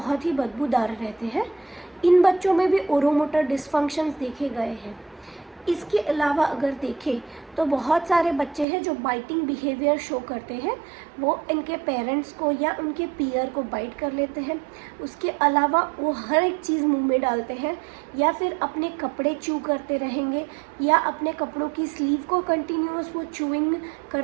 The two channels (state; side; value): drops out; left; at 8.7 s